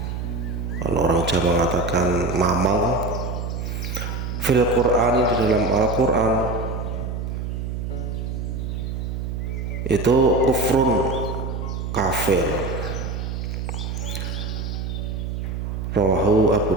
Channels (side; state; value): right; noise; hum, 4 dB below the sound